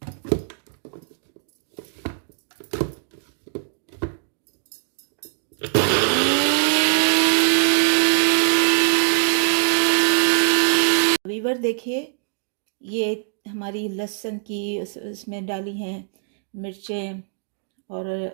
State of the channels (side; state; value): left; silent; digital silence